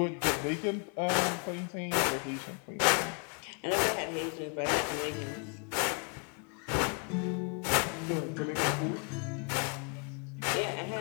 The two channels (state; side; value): quieter; right; 39.6 dB